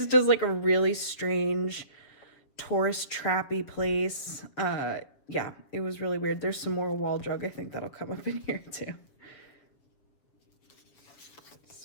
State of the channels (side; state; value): right; late; 7.0 ms